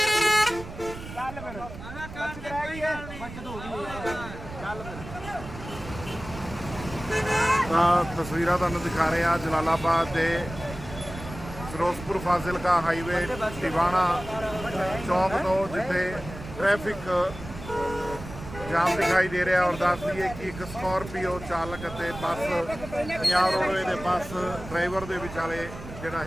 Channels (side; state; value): right; noise; rumble, 12 dB below the sound